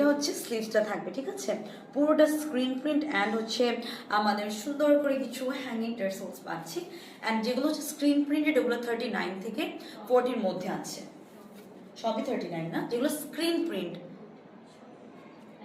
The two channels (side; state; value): both; identical; correlation 1.00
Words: হচ্ছে স্লিভসটা থাকবে, ঠিক আছে, পুরোটা স্ক্রিন প্রিন্ট, অ্যান্ড হচ্ছে আমাদের সুন্দর করে কিছু হ্যাঙ্গিং টার্সেলস পাচ্ছি। অ্যান্ড যেগুলো হচ্ছে স্ক্রিন প্রিন্টেড ওগুলো 39 থেকে 40-র মধ্যে আছে। সবই 39 না, যেগুলো স্ক্রিন প্রিন্ট